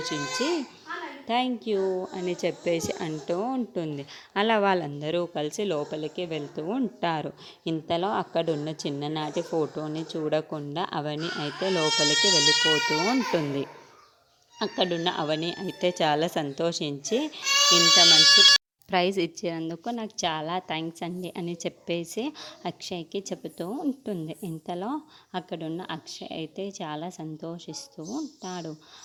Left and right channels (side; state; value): both; identical; correlation 1.00